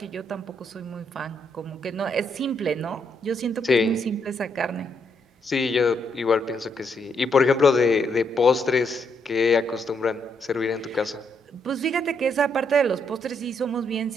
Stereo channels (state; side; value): normal; both; correlation 0.75